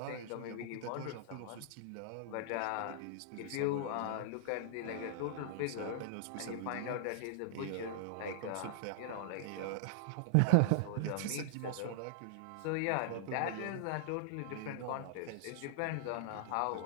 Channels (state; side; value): different; both; correlation -0.01